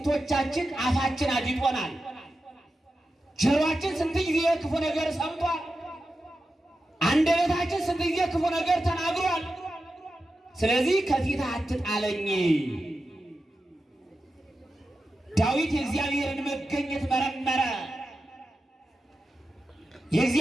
አፋችን አዲጦናል። ጆሮአችን ስንት ጊዜ ክፉ ነገር ሰምቷል። አንደበታችን ስንት ጊዜ ክፉ ነገር ተናግሯል። ስለዚህ ከፊትህ አትጣለኝ። ዳዊት የእግዚአብሔርን መገኘት መረመረ።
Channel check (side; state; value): both; normal; correlation 0.91